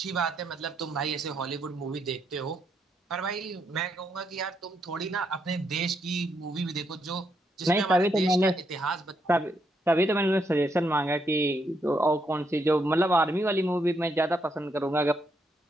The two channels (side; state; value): both; normal; correlation 0.77